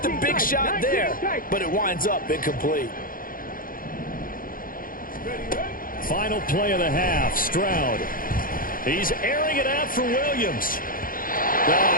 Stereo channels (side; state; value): right; late; 0.41 ms